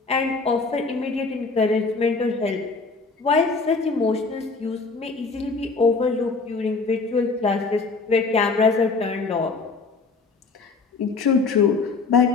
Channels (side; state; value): right; quieter; 4.2 dB